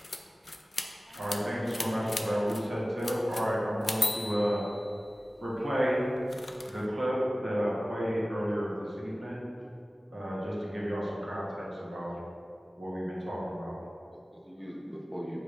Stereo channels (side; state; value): both; normal; correlation 0.97